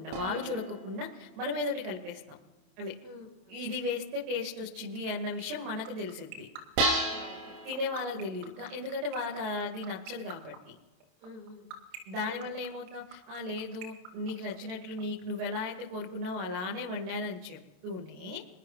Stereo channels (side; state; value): left; late; 28 ms